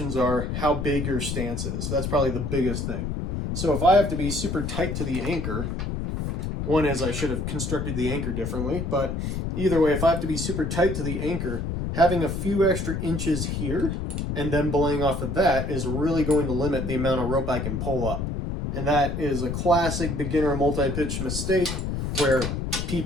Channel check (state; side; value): noise; left; rumble, 3 dB below the sound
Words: are how big your stance is. That's probably the biggest thing. So if I have to be super tight to the anchor, one is I should have constructed the anchor differently, but either way, if I have to be super tight to the anchor, having a few extra inches here and then belaying off of that is really going to limit the amount of rope I can pull up. And that is a classic beginner multi-pitch mistake where